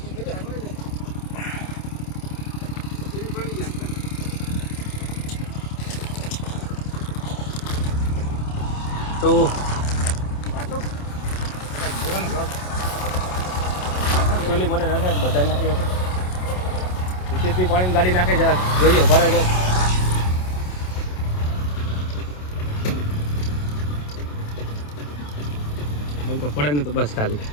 તો એકચ્યુઅલી મને નથી બધા નાખી આપણે હિતેશભાઈ પાણીની ગાડી નાખે જરા જોઈએ ભરે જો પડે ને તો બસ ખાલી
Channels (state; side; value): late; right; 27 ms